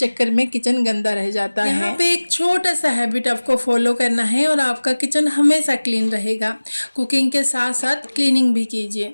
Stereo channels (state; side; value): inverted; both; correlation -1.00